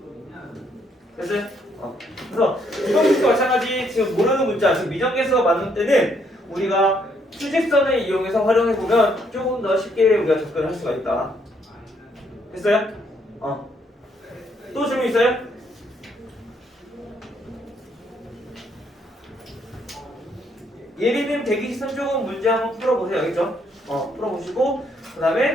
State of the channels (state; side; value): normal; both; correlation 0.71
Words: 됐어요? 그래서 부등식과 마찬가지 지금 모르는 문자 지금 미정계수가 맞는 때는 우리가 수직선을 이용해서 활용해보면 조금 더 쉽게 우리가 접근할 수가 있다. 됐어요? 또 질문 있어요? 예리님 대기시선 조금 문제 한번 풀어보세요. 알겠죠? 풀어보시고 그